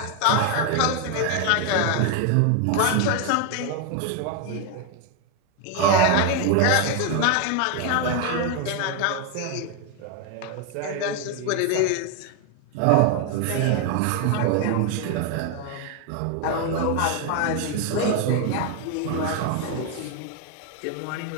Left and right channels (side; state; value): both; different; correlation 0.01